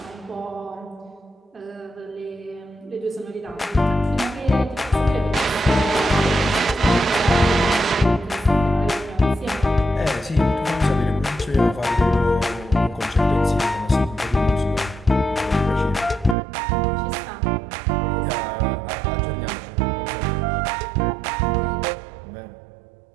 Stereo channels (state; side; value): drops out; left; at 16.4 s